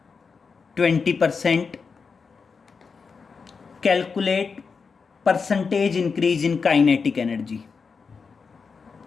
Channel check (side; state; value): right; quieter; 5.2 dB